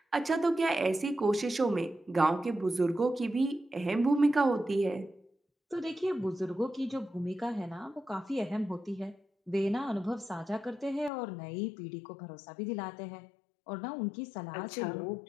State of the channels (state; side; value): drops out; right; at 11.1 s